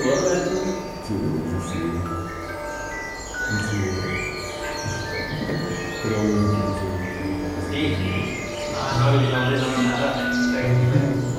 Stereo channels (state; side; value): identical; both; correlation 1.00